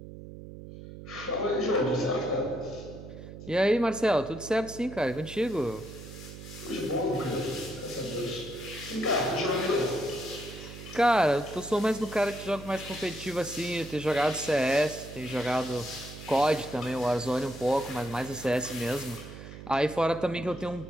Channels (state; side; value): noise; right; hum, 13 dB below the sound